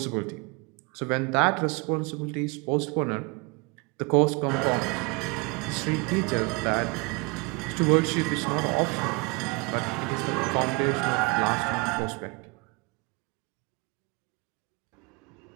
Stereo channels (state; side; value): quieter; left; 28.8 dB